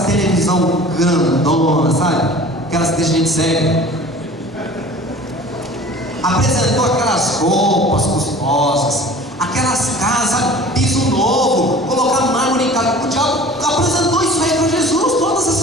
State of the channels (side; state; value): both; normal; correlation 0.44